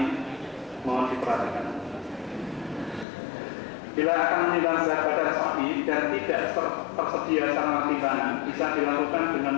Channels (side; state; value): right; drops out; at 3.1 s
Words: mohon diperhatikan. Bila akan menimbang berat badan sapi dan tidak tersedia sarana timbangan, bisa dilakukan dengan